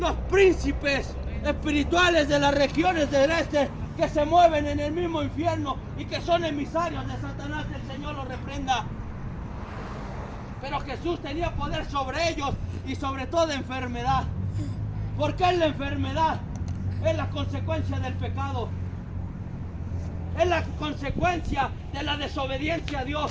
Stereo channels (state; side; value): identical; both; correlation 1.00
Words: príncipes espirituales de las regiones del este, que se mueven en el mismo infierno y que son emisarios de Satanás. El Señor los reprenda. Pero Jesús tenía poder sobre ellos y sobre toda enfermedad. Porque es la enfermedad, es la consecuencia del pecado, es la consecuencia de la desobediencia a